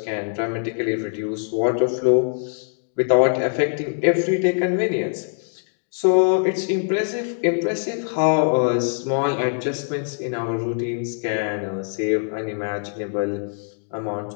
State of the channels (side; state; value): right; silent; digital silence